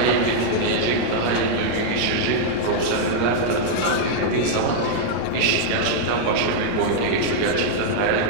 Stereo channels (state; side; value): different; both; correlation -0.02